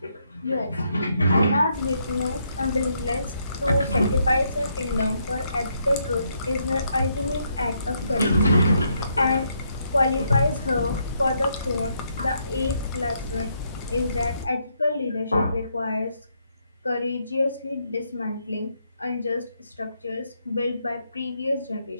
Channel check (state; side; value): inverted; both; correlation -0.75